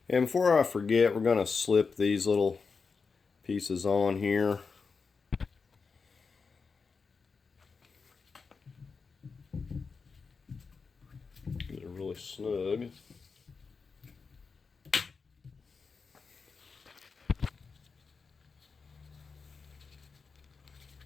And before I forget, we're going to slip these little pieces on here. Get it really snug.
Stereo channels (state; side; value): quieter; right; 5.0 dB